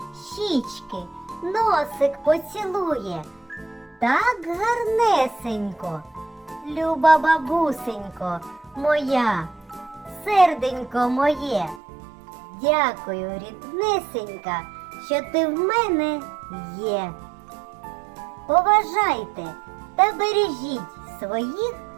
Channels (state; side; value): drops out; left; at 11.8 s